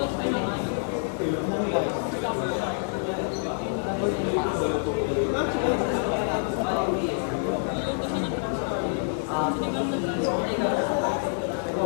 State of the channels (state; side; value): silent; right; digital silence